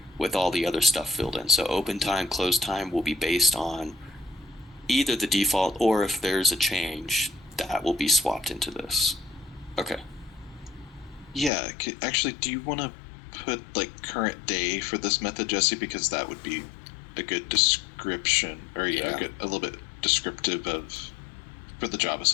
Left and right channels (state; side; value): drops out; right; at 11.5 s